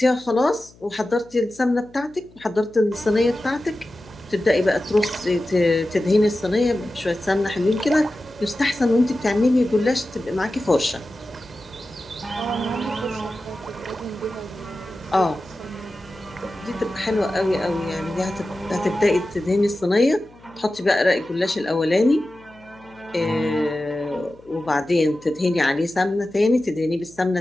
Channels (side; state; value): left; noise; hum, 26 dB below the sound